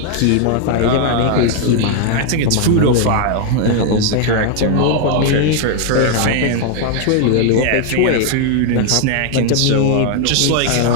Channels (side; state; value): both; different; correlation 0.00